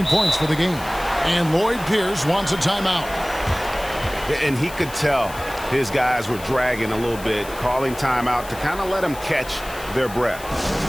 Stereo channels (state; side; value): noise; left; hiss, 16 dB below the sound